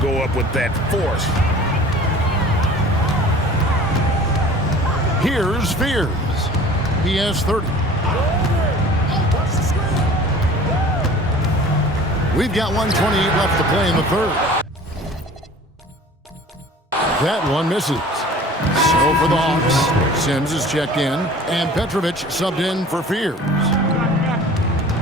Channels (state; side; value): normal; both; correlation 0.45